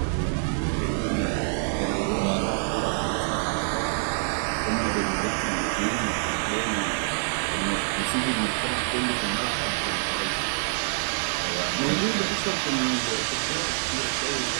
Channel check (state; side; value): silent; left; 61 dB below the other